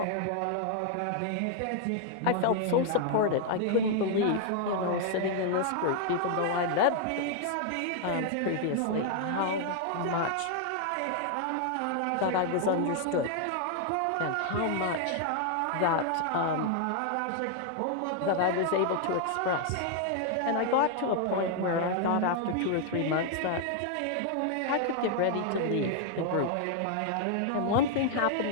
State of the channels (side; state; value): both; different; correlation 0.00